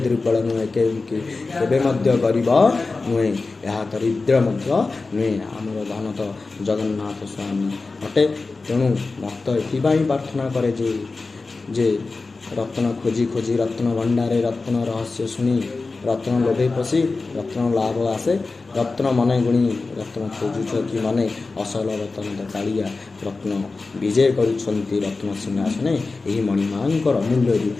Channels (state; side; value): quieter; right; 3.8 dB